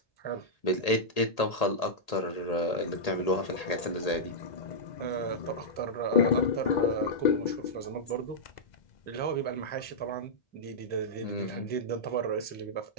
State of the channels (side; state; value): right; late; 1.8 ms